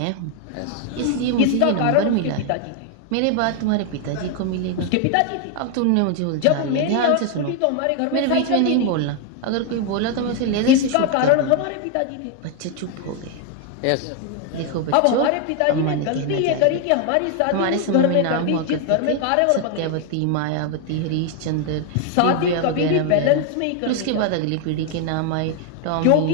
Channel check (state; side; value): different; both; correlation 0.00